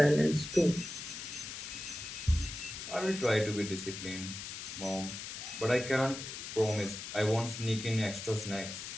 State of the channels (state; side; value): noise; left; hiss, 8 dB below the sound